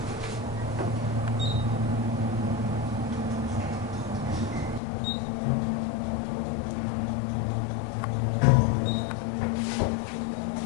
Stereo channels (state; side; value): drops out; right; at 4.8 s